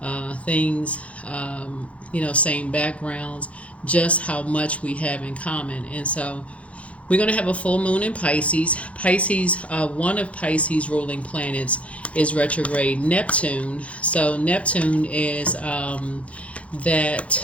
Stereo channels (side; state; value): right; late; 0.064 ms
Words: things, same backgrounds, just how much we have in common. And so we're going to have a full moon in Pisces. One of Pisces ruling planets is retrograde Neptune. So Neptune is